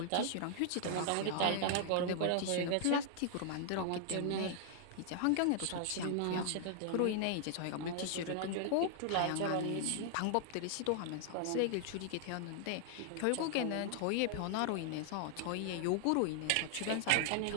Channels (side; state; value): both; different; correlation 0.00